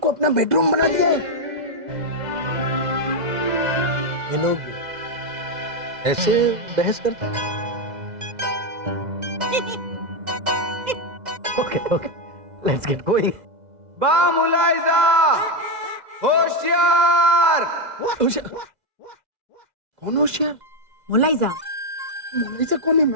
अपना बेडरूम बना दिया है। ये लोग ऐसे बहस करते हैं? Okay okay, let's get going. बा मुलाइजा, होशियार। कौन होशियार? मुलाइजा मोनालिसा कौन है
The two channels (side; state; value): left; late; 2.0 ms